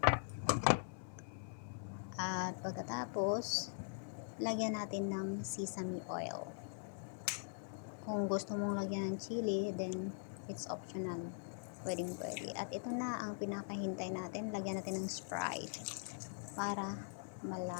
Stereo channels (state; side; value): silent; right; digital silence